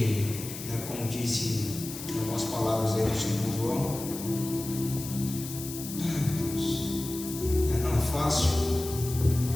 né, como disse algumas palavras aí do Senhor João, não é fácil.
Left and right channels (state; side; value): noise; left; hiss, 10 dB below the sound